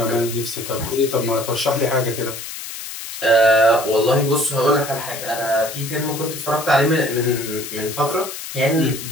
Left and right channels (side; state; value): left; noise; hiss, 9 dB below the sound